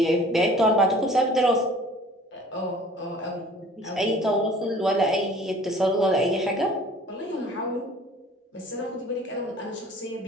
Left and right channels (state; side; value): normal; both; correlation 0.49